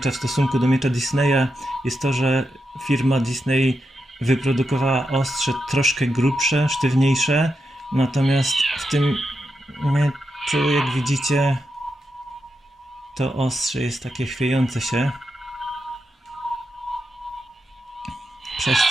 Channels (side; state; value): both; normal; correlation 0.86